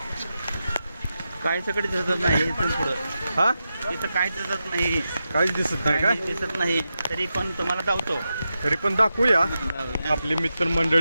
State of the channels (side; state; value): both; inverted; correlation -0.90